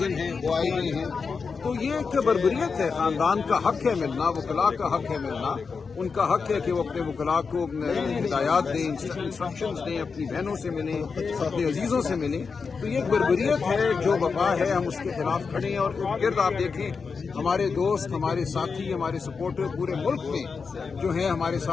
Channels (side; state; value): right; quieter; 5.2 dB